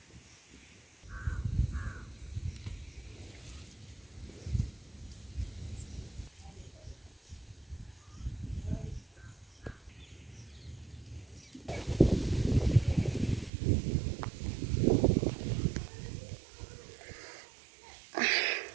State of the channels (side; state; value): left; drops out; at 13.5 s